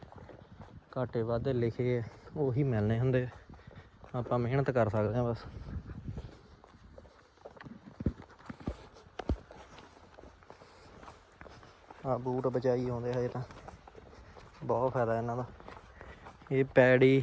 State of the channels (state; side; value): identical; both; correlation 1.00